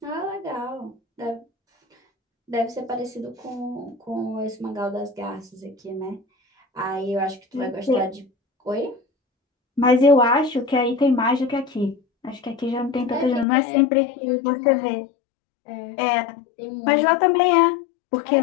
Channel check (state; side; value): drops out; right; at 13.5 s